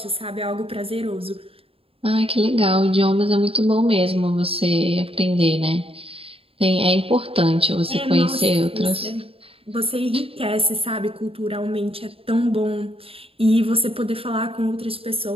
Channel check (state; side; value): late; left; 0.27 ms